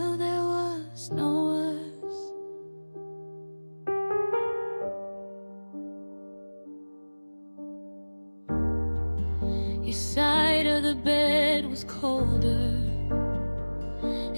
there was no us. Your side of the bed was colder,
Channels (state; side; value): inverted; both; correlation -1.00